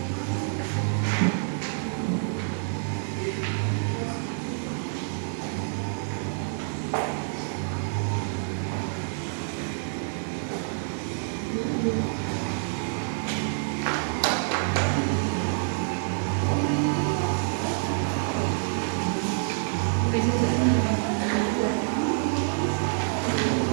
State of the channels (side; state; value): left; silent; digital silence